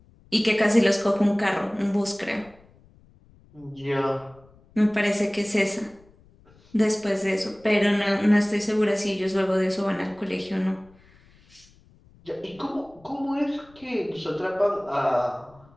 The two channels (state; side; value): noise; left; rumble, 28 dB below the sound